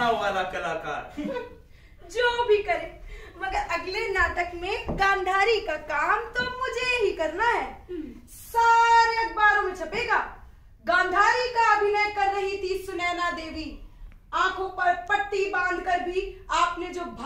वाला कलाकार। जो भी करे, मगर अगले नाटक में गांधारी का काम तो मुझे ही करना है। सारे अखबारों में छपेगा, गांधारी का अभिनय कर रही थी सुनैना देवी। आंखों पर पट्टी बांधकर भी आपने जो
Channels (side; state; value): both; identical; correlation 1.00